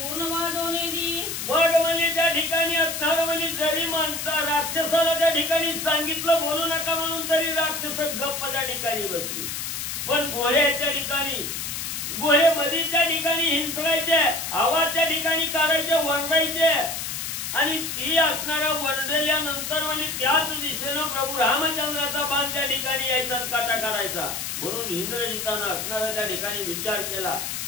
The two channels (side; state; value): left; noise; hiss, 4 dB below the sound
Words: वाजवणे दी. मग म्हणजे त्या ठिकाणी असणार म्हणजे जरी माणसा राक्षसाला त्या ठिकाणी सांगितलं बोलू नका म्हणून तरी राक्षस गप्प त्या ठिकाणी बसली. पण घोड्याच्या ठिकाणी घोडे मध्ये त्या ठिकाणी हिंसकायचे, आवाज त्या ठिकाणी काढायचे, वरडायचे आणि ती असणाऱ्या वरडल्यानंतर म्हणजे त्याच दिशेनं प्रभू रामचंद्राचा बाण त्या ठिकाणी यायचा काटा काढायचा. म्हणून इंद्रजितानं असणारा त्या ठिकाणी विचार केला